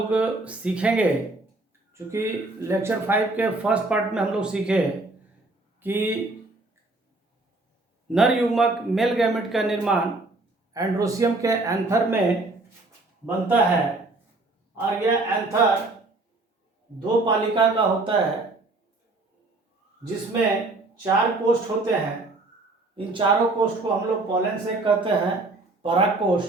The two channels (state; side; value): quieter; left; 3.1 dB